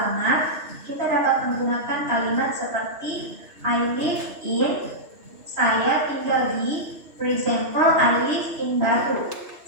kita dapat menggunakan kalimat seperti I live in, saya tinggal di. For example, I live in Batu.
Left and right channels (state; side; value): late; left; 3.0 ms